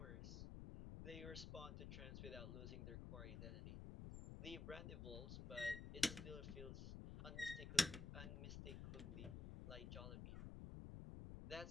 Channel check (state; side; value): noise; left; rumble, 5 dB below the sound